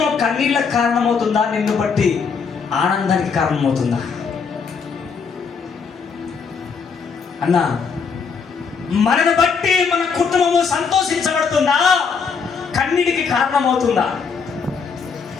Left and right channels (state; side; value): quieter; right; 5.7 dB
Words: కన్నీళ్ళకి కారణమవుతుందా, నిన్ను బట్టి ఆనందానికి కారణమవుతుందా? అన్నా మనను బట్టి మన కుటుంబము సంతోషించబడుతుందా, కన్నీటికి కారణమవుతుందా?